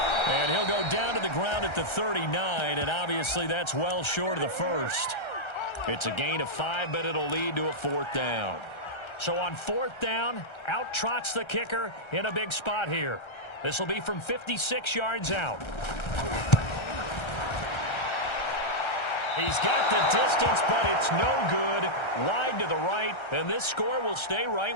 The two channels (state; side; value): late; right; 1.3 ms